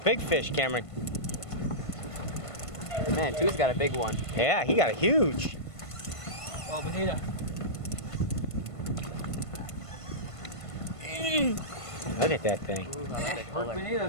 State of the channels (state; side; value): late; right; 1.5 ms